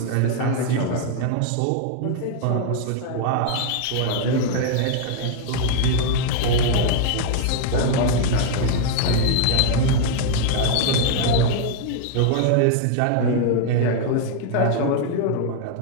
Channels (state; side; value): different; both; correlation 0.00